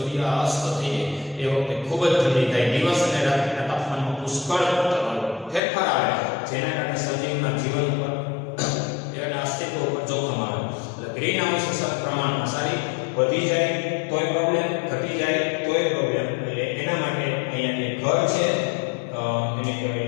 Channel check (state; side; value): drops out; right; at 5.6 s